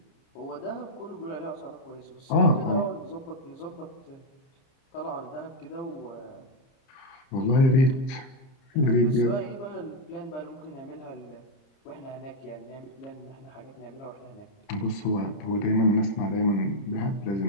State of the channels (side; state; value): right; late; 30 ms